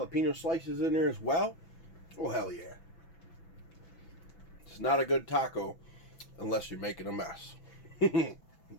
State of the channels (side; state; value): right; late; 6.0 ms